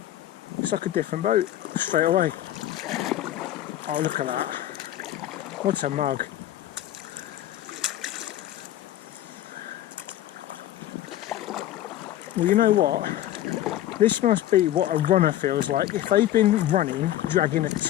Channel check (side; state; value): right; quieter; 13.1 dB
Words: It's like a different boat straight away. Oh, look at that. What's a mug? Well, you know what? This must be what a runner feels like if they've been running, dragging a